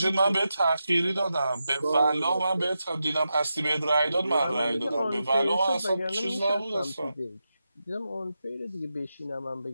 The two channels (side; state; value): both; inverted; correlation -0.89